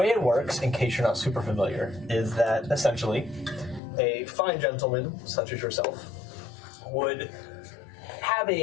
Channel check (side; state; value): right; drops out; at 3.8 s